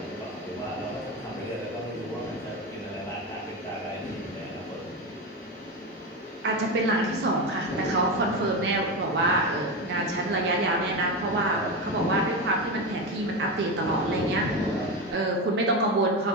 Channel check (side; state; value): both; normal; correlation 0.18